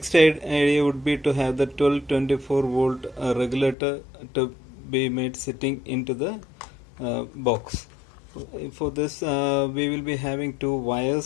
idea would be to have the 1224 volt regulator to be made sitting into the box. For this we will be having 2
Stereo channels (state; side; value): drops out; right; at 3.8 s